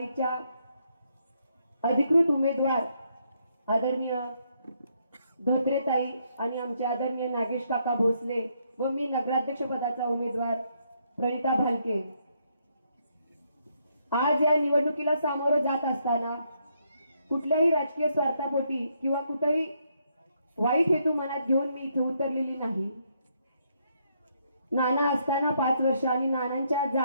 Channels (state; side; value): inverted; both; correlation -0.75